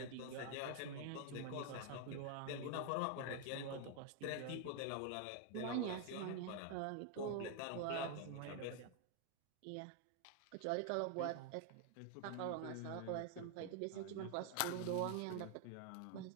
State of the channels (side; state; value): both; different; correlation 0.00